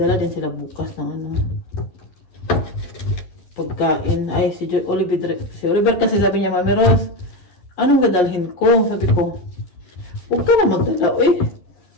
din sila bukas ng pagkain. Ay, si Oliver kasi sabi niya, Mami Rose, anong dadalhin ko? Sabi ko, huwag ka na magdala.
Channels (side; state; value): right; late; 11 ms